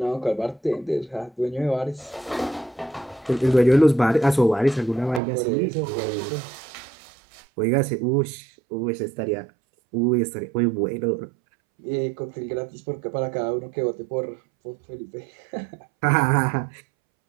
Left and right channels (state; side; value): drops out; left; at 5.2 s